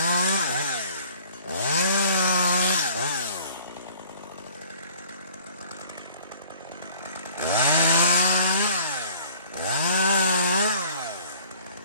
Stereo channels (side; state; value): both; inverted; correlation -0.53